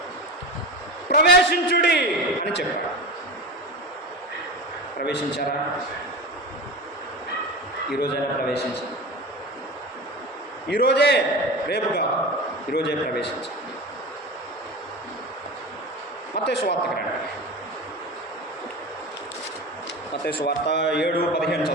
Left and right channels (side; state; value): both; normal; correlation 0.28